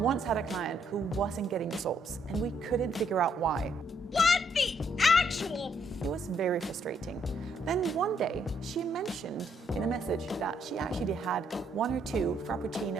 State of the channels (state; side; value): normal; both; correlation 0.72